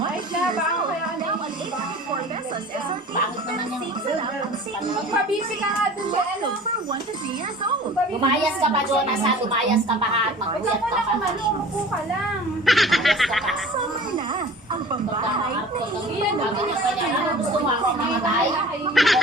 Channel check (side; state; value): both; normal; correlation 0.42